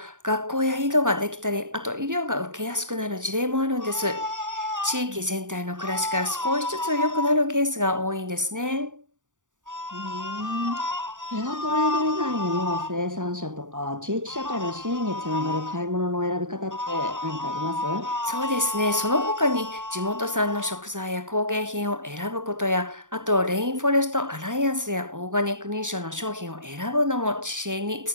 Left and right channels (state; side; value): late; left; 0.87 ms